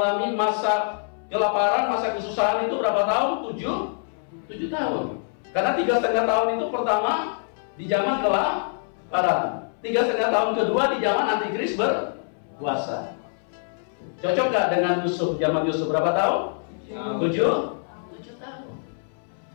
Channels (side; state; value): right; silent; 62 dB below the other